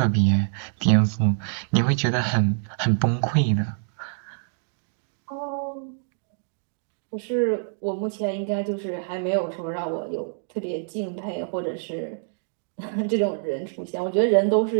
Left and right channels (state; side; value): silent; left; digital silence